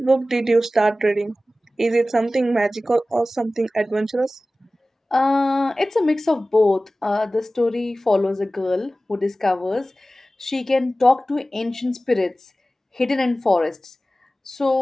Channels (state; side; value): normal; both; correlation 0.96